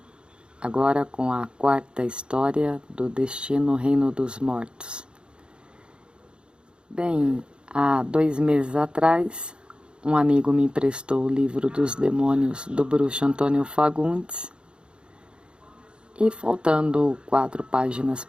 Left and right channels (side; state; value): left; late; 0.054 ms